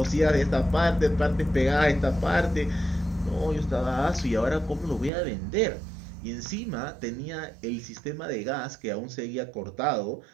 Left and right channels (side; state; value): left; drops out; at 5.1 s